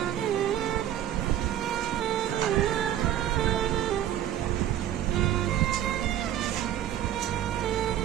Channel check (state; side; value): quieter; left; 11.5 dB